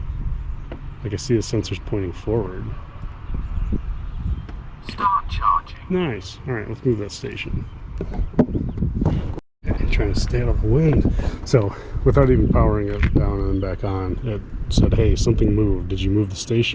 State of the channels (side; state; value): both; identical; correlation 1.00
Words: Like I see the sensors pointing forward. Start charging. Nice. All right, let's move that station. Okay, trying to stay out of the wind. So, without even powering it down and then back on, it said, "Hey, something moved. Did you move the